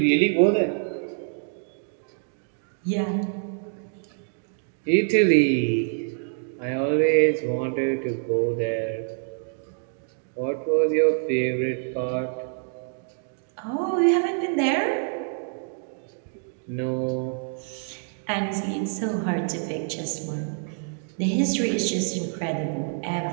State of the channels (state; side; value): silent; left; 61 dB below the other